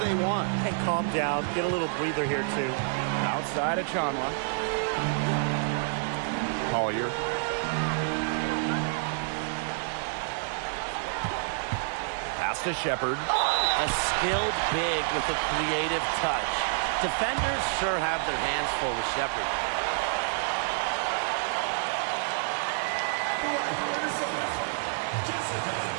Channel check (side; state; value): left; silent; 59 dB below the other